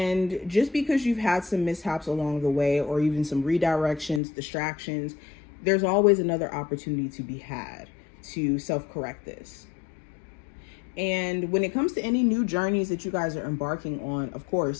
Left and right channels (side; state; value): right; drops out; at 4.2 s